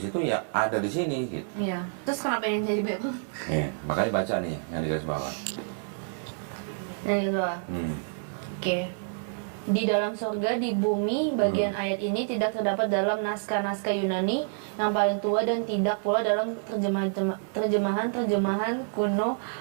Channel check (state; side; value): silent; left; digital silence